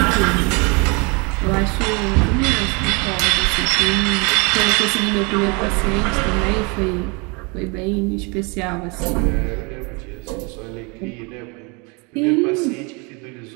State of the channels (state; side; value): quieter; left; 30.3 dB